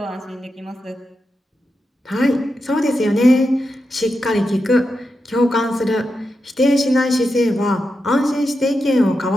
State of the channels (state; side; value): normal; both; correlation 0.88